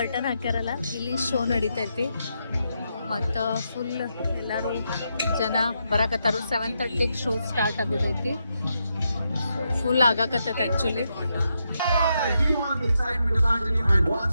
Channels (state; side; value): inverted; both; correlation -0.83